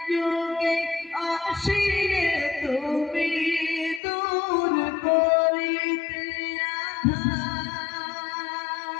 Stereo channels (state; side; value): drops out; right; at 4.0 s